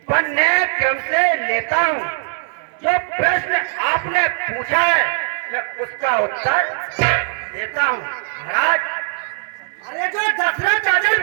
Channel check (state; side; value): silent; left; 60 dB below the other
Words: पन्ने क्रम से लेता हूँ। जो प्रश्न आपने पूछा है मैं उसका उत्तर देता हूँ। महाराज, अरे जो दशरथ राजन